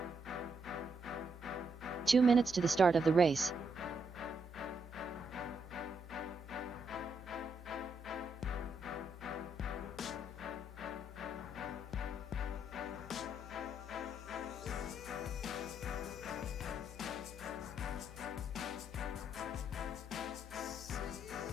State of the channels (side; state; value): both; normal; correlation 0.77